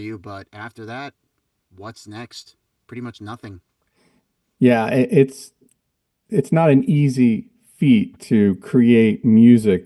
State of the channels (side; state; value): both; identical; correlation 1.00